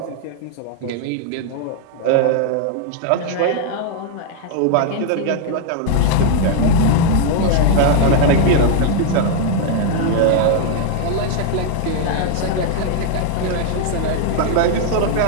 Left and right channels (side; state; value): both; different; correlation 0.00